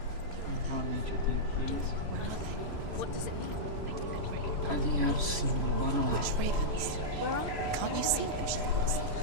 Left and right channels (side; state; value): left; late; 3.0 ms